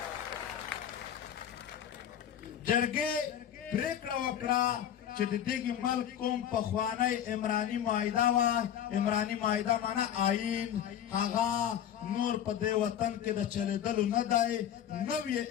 جرګې پرېکړه وکړه چې د دغې ملک کوم پخوانی عمراني معاهده وه عمراني معاهده معنا آیین هغه نور په دې وطن کې د چلېدلو نه دی. نوې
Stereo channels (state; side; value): quieter; right; 10.0 dB